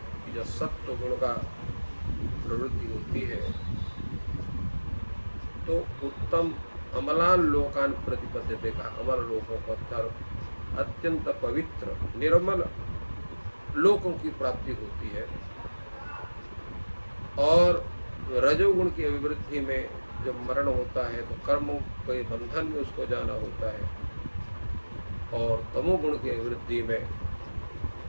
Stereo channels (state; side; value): inverted; both; correlation -1.00